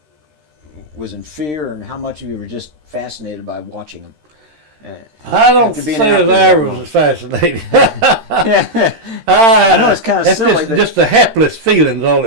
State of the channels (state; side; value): late; left; 13 ms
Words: was in fear, and how much of you were just fascinated by watching them? I don't say that I was fascinated. I know it's kind of silly. Just the hapless feelings, all